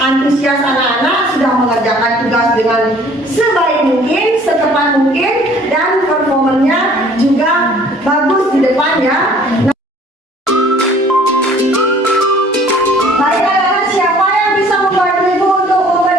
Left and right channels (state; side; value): normal; both; correlation 0.54